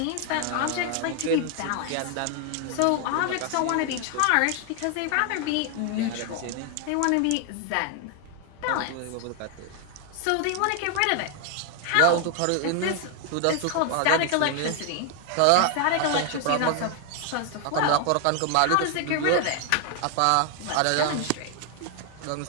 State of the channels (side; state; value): both; different; correlation 0.00